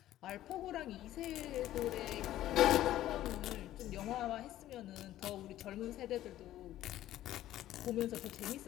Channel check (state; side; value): quieter; right; 13.7 dB